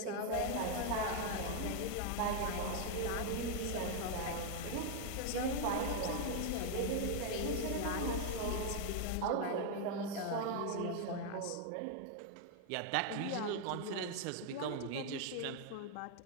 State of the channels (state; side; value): different; both; correlation 0.00